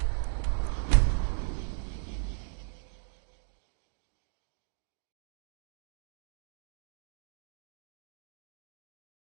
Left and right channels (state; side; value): silent; left; digital silence